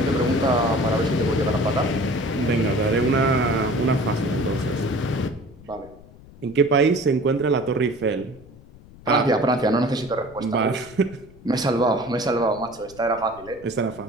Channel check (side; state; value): left; noise; rumble, 21 dB below the sound